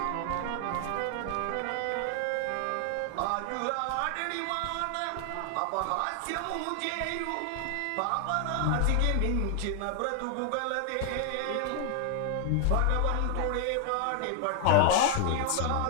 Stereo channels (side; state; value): both; different; correlation 0.00